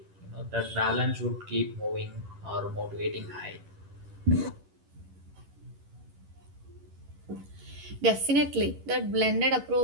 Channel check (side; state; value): left; late; 11 ms